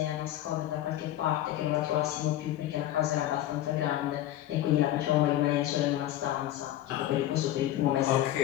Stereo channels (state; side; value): quieter; right; 13.4 dB